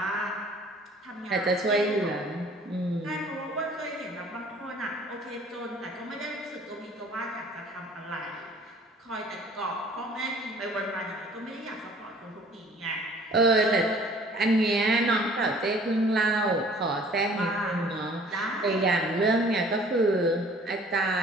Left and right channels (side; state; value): both; normal; correlation 0.53